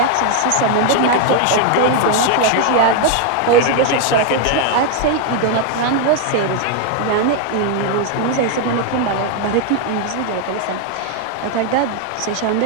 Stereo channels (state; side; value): different; both; correlation 0.01